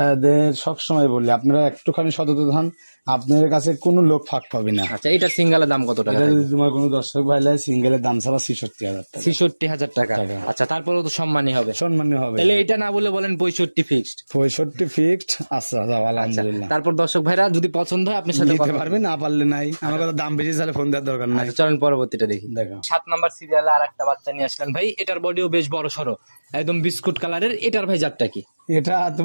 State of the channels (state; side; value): inverted; both; correlation -1.00